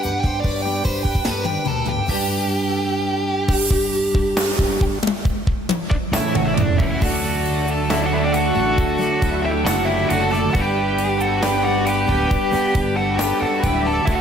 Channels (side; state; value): both; normal; correlation 0.69